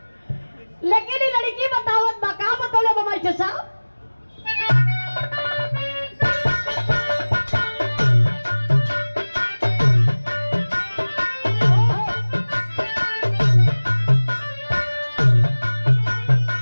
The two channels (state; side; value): inverted; both; correlation -1.00